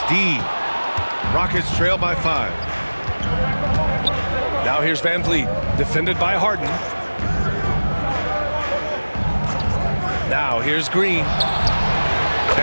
D. Rockets trail by 5. Now here's Van Vliet, defended by Harden. Now here's Green.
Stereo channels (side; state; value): both; inverted; correlation -1.00